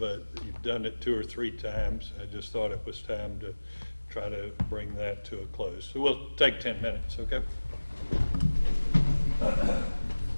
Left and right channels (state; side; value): inverted; both; correlation -1.00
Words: you've done it 2 or 3 times. I just thought it was time to try to bring that to a close. So we'll take 10 minutes, okay?